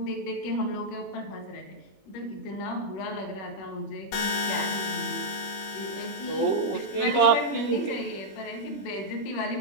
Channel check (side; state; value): right; late; 21 ms